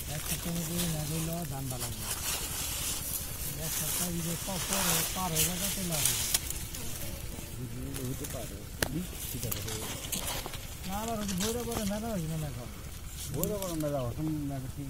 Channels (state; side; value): identical; both; correlation 1.00